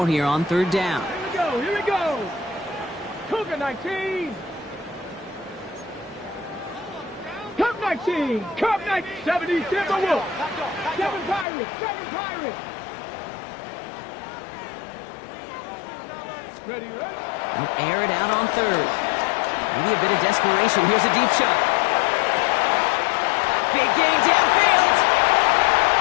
here on 3rd down. Here we go! Cougar 19! Cup 19! Cup 19! 70 Timberwolves! 7 Pirates! 7 Pirates! Ready? They'll air it out on 3rd. Maybe a bit of desperation. Here's a deep shot. Big gain downfield.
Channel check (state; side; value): drops out; right; at 11.5 s